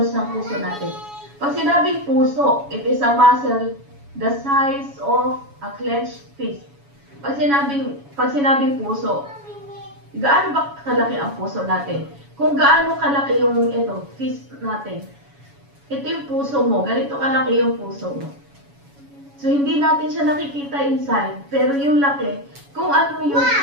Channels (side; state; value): left; late; 7.1 ms